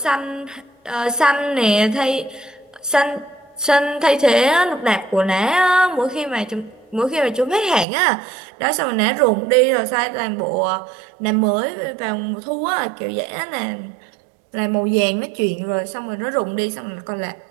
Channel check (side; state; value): left; drops out; at 7.9 s